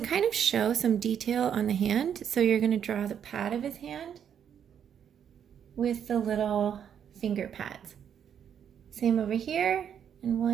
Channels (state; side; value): quieter; left; 8.6 dB